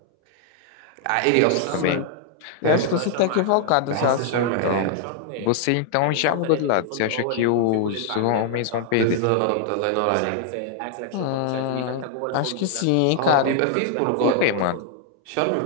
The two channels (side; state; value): both; different; correlation 0.00